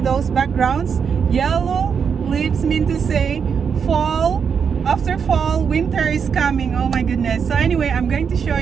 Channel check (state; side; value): quieter; left; 6.7 dB